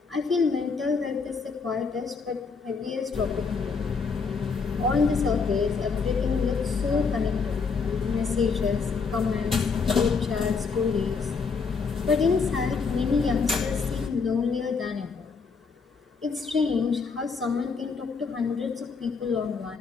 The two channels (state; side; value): quieter; right; 5.0 dB